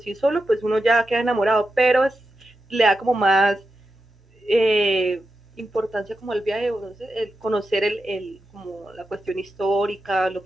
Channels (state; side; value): normal; both; correlation 0.89